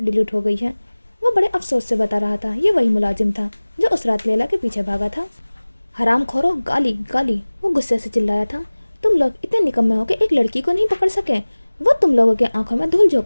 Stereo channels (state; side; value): inverted; both; correlation -1.00